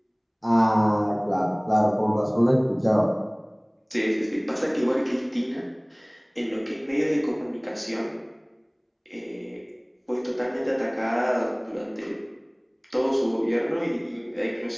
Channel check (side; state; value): both; identical; correlation 1.00